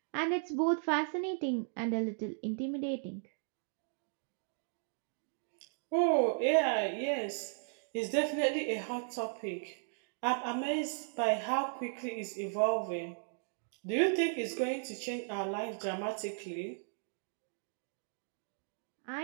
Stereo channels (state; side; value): silent; left; digital silence